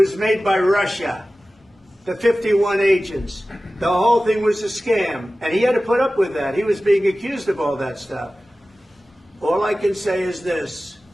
made by Russia. The 51 agents. The whole thing was a scam. And he had to put up with that. He was being accused of all that stuff. All I can say is this.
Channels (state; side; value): normal; both; correlation 0.96